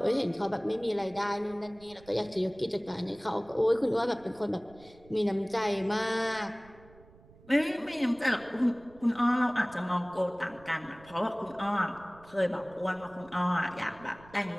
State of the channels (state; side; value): noise; right; rumble, 24 dB below the sound